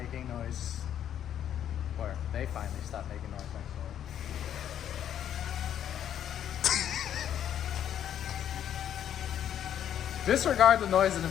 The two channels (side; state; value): right; quieter; 10.0 dB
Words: noise. Or they finally stopped making noise, actually. Disregard the noise in the